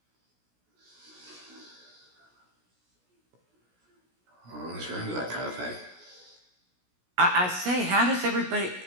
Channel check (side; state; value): left; late; 16 ms